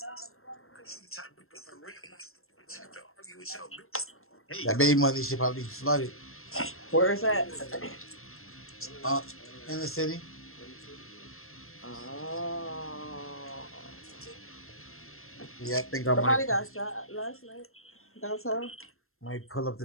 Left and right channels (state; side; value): late; right; 0.62 ms